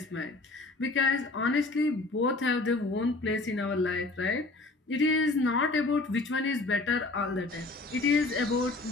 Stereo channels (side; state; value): right; quieter; 3.2 dB